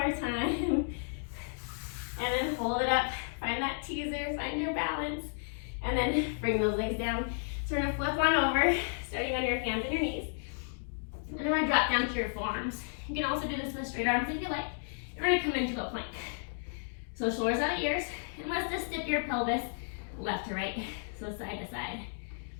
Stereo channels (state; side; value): silent; right; digital silence